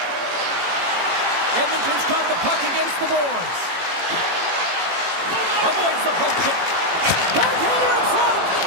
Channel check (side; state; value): left; late; 18 ms